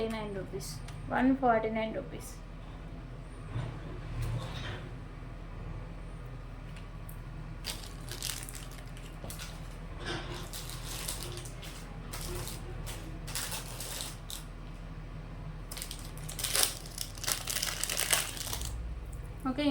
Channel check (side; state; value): both; identical; correlation 1.00